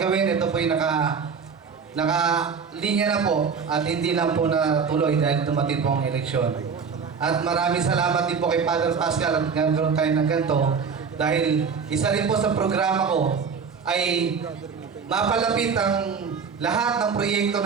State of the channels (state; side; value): quieter; left; 5.9 dB